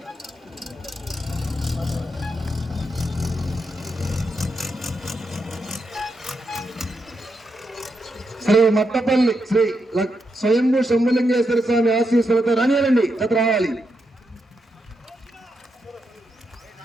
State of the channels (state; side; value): normal; both; correlation 0.83